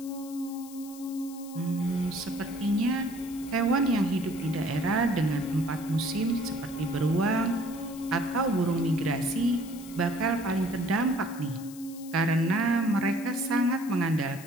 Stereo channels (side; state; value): left; noise; hiss, 18 dB below the sound